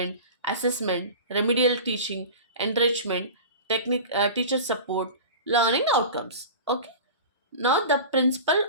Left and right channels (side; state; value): both; inverted; correlation -0.34